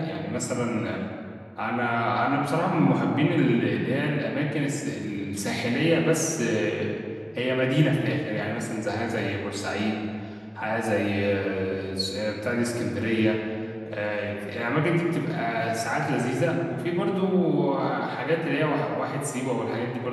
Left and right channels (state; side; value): identical; both; correlation 1.00